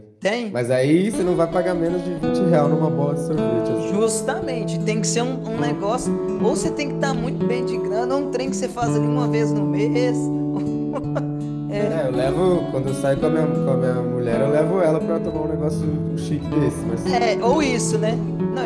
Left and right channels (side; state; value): both; identical; correlation 1.00